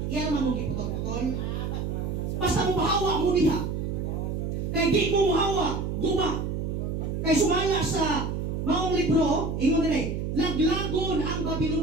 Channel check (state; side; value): noise; right; hum, 2 dB below the sound